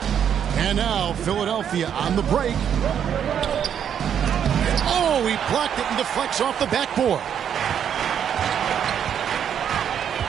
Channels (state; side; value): quieter; left; 8.7 dB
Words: And now Philadelphia on the break. Oh, he blocked it and deflects off the backboard.